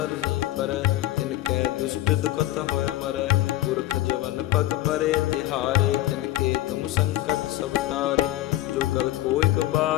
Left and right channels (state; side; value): quieter; right; 15.4 dB